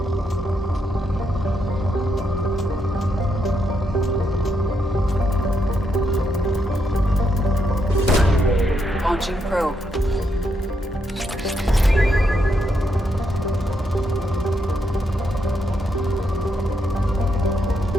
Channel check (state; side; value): normal; both; correlation 0.79